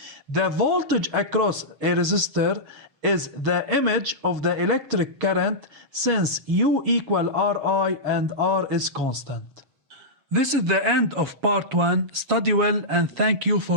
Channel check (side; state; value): left; late; 7.1 ms